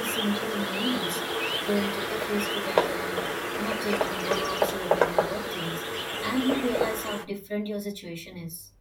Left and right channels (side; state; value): both; identical; correlation 1.00